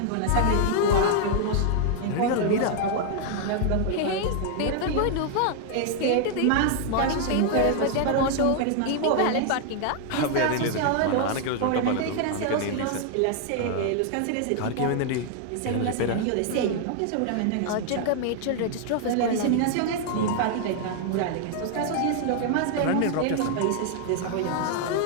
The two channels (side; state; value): both; different; correlation 0.00